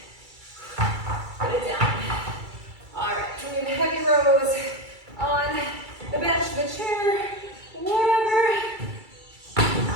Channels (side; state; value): left; late; 2.3 ms